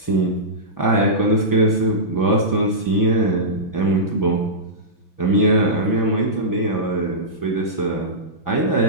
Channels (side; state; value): right; late; 6.0 ms